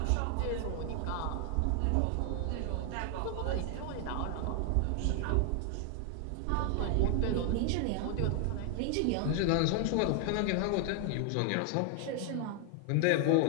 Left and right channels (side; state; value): both; different; correlation 0.00